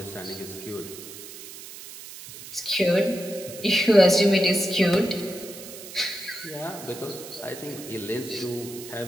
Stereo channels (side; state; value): right; noise; hiss, 14 dB below the sound